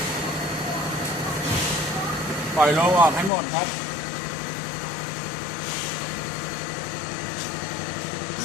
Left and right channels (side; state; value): right; drops out; at 3.3 s